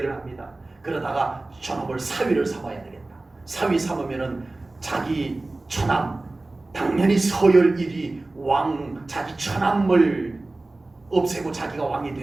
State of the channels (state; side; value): quieter; left; 3.0 dB